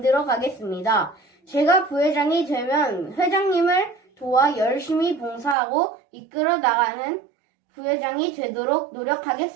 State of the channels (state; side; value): drops out; left; at 5.6 s